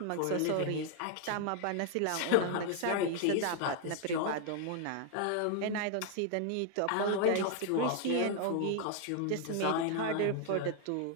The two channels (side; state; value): both; different; correlation 0.00